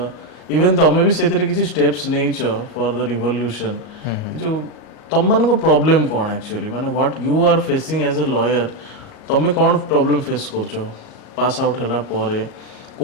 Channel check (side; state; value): right; late; 38 ms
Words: इवन तमे भी सेतरे किछि स्टेप्स नेइछ फॉर द रिवोल्यूशन जो तम मन को प्रॉब्लम कोन एक्चुअली माने what you are facing as a lawyer तमे कोन प्रॉब्लम फेस करछो पास आउट हला परे